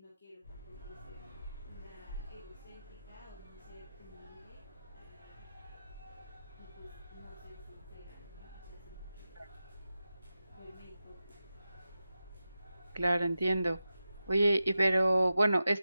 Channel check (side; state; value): both; inverted; correlation -0.92